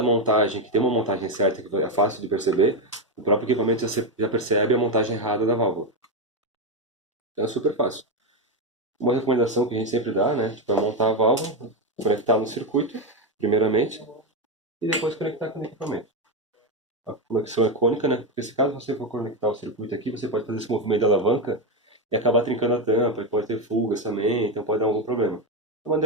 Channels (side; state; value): both; normal; correlation 0.09